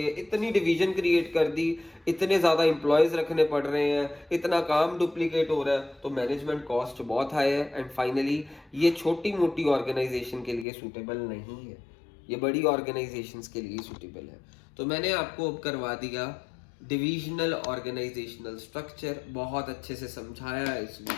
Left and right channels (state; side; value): drops out; right; at 10.7 s